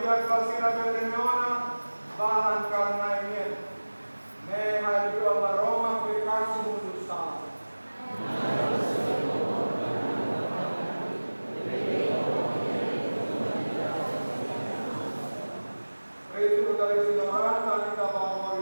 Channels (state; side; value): inverted; both; correlation -1.00